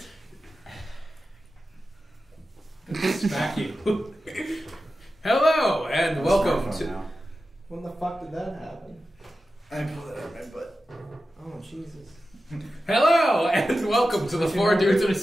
Smack you. Hello and welcome to. Now. When the fuck did that happen? I pulled it out of my butt. Oh, Jesus. Hello and welcome to the Four Dudes in a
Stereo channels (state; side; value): normal; both; correlation 0.93